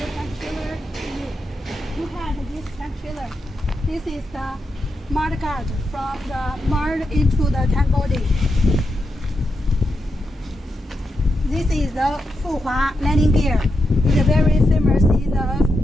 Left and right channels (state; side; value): normal; both; correlation 0.85